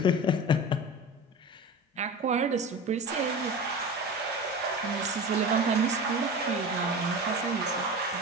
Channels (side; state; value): both; normal; correlation 0.30